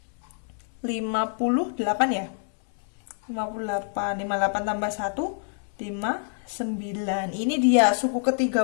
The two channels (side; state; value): right; silent; 61 dB below the other